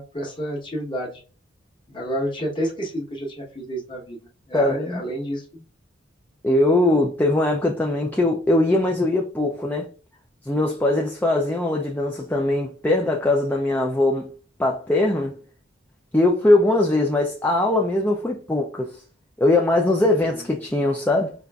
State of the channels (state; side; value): normal; both; correlation 0.63